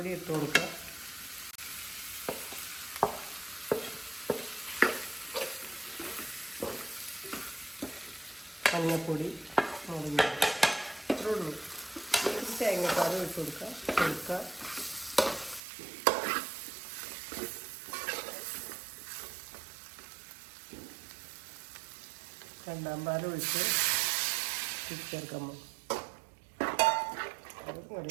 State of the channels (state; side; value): drops out; left; at 15.6 s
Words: ഇട്ട് കൊടുക്കുക, മഞ്ഞപ്പൊടി, മുളക് ഇത്രേ ഉള്ളൂ. തേങ്ങാപ്പാൽ ഇട്ട് കൊടുക്കുക. രണ്ടാം പാൽ ഒഴിച്ച് ചേർക്കുമ്പോൾ